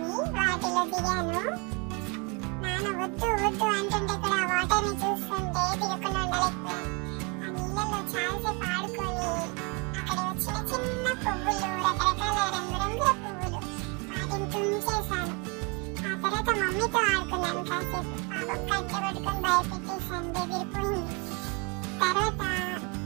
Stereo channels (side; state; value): left; quieter; 30.1 dB